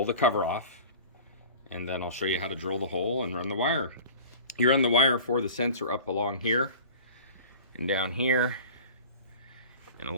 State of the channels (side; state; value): both; inverted; correlation -0.40